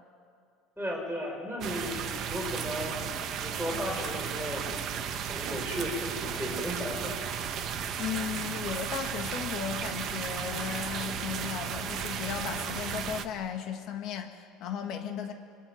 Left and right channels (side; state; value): both; normal; correlation 0.46